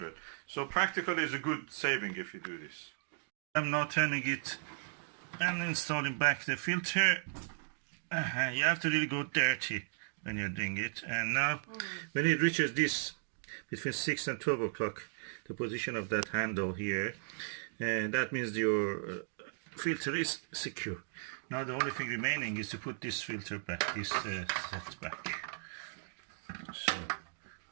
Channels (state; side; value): silent; left; digital silence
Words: So practically it's a good saving if you do this. I'm now turning it and installing back the filter. You have to really go dirty when you're doing it. And now when it reaches this, between 6 and 12 o'clock, the position of that handle here, and that means your filter is secure. Now the only thing remaining is to put this filter back, this set back. So